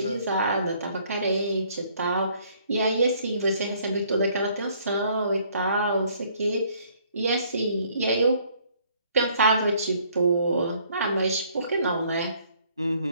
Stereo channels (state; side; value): inverted; both; correlation -0.62